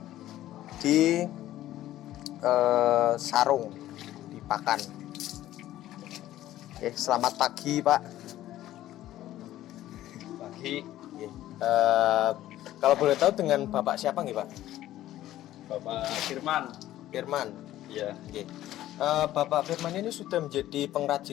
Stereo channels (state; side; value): quieter; right; 13.9 dB